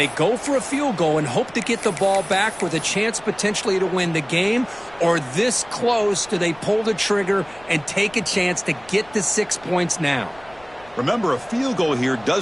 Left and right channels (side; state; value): left; noise; rumble, 26 dB below the sound